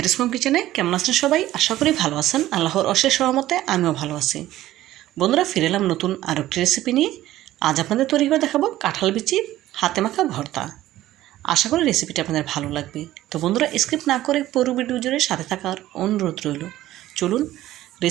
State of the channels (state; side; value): quieter; left; 14.7 dB